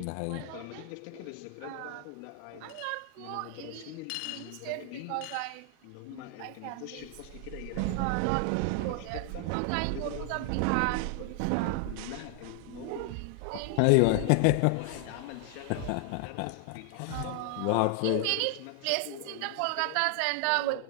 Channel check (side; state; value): both; different; correlation 0.00